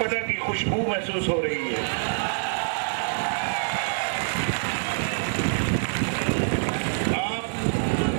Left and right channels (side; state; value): left; silent; digital silence